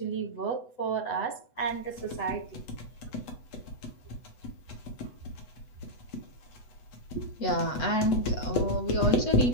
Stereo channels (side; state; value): right; late; 8.1 ms